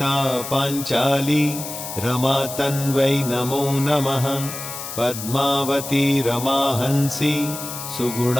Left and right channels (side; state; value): left; noise; hiss, 8 dB below the sound